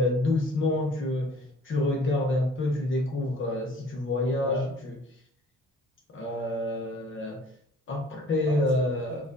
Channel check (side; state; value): both; normal; correlation 0.53